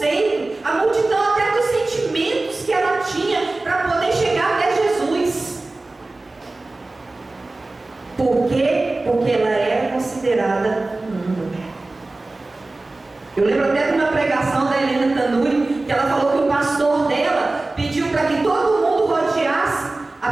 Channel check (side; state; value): left; quieter; 3.1 dB